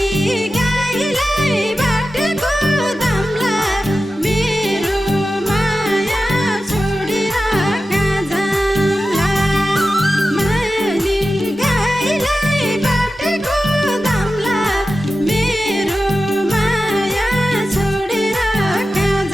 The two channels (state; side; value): normal; both; correlation 0.93